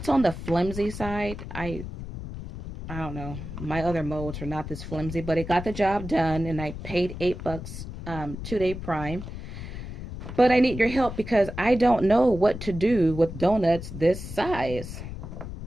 on the flimsy side. I don't know. My other molds are not this flimsy, but it got the job done, and I paid $8 2-day prime. But I need your help because I don't know what to do with donuts this size.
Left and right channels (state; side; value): noise; left; rumble, 9 dB below the sound